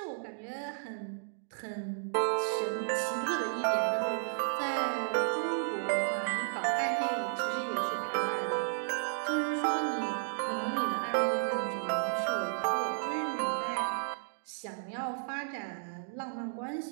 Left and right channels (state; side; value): silent; left; digital silence